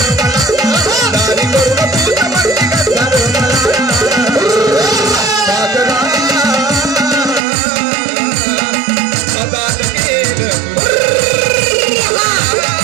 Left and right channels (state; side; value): drops out; left; at 7.4 s